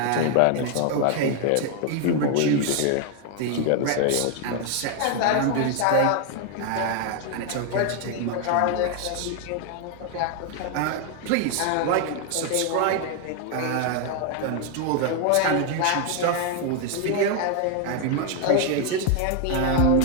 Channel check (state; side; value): different; both; correlation 0.00